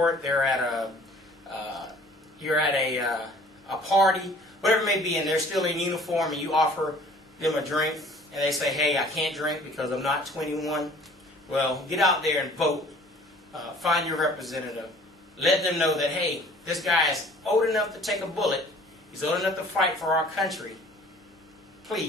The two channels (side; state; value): both; normal; correlation 0.51